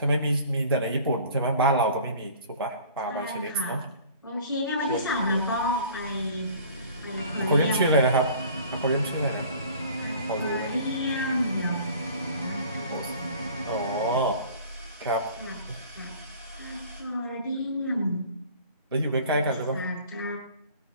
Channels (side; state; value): both; inverted; correlation -0.47